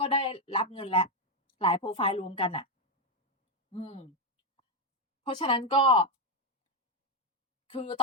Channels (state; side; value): normal; both; correlation 0.04